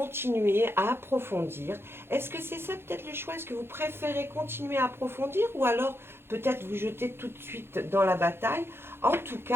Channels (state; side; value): late; left; 0.11 ms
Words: à approfondir. Est-ce que c'est ça peut-être le choix? Est-ce que vous préférez continuer à approfondir ou alors peut-être vous jeter tout de suite dans la bataille? En tout